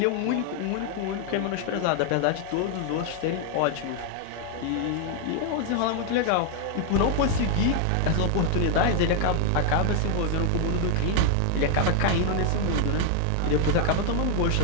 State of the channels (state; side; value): different; both; correlation 0.00